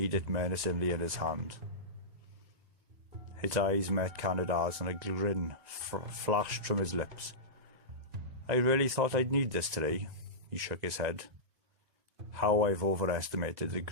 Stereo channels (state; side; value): late; left; 2.0 ms